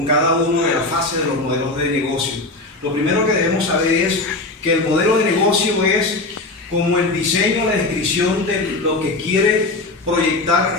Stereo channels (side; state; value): right; quieter; 3.1 dB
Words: cada uno de las fases de los modelos de negocio. Lo primero que debemos saber es que el modelo de negocio es como el diseño, la descripción de lo que quiere